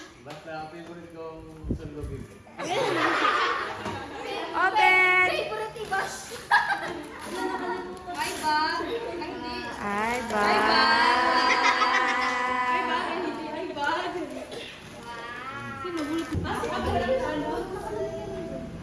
Basta ang favorite kong sundogin. Open! Bye ba? Ay, bye!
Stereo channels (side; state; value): both; identical; correlation 1.00